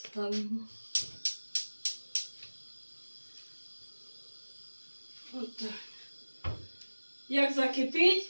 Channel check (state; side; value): inverted; both; correlation -1.00